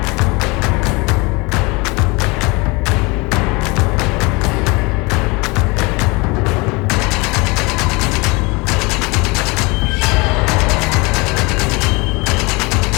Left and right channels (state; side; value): quieter; right; 26.4 dB